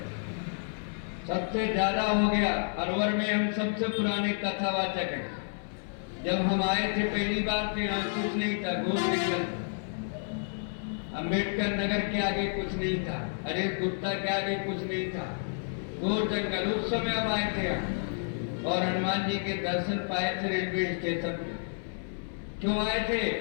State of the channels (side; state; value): right; silent; 58 dB below the other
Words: सबसे ज्यादा हो गया। अलवर में हम सबसे पुराने कथावाचक हैं। जब हम आए थे पहली बार तो यहाँ कुछ नहीं था, घोर जंगल, अम्बेडकर नगर के आगे कुछ नहीं था, अरे गुप्ता के आगे कुछ नहीं था, घोर जंगल। उस समय हम आए थे यहाँ और हनुमान जी के दर्शन पाए थे रेलवे स्टेशन पे। क्यों आए थे?